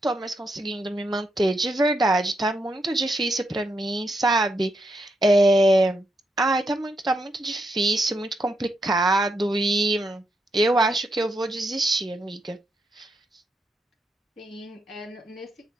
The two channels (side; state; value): both; normal; correlation 0.81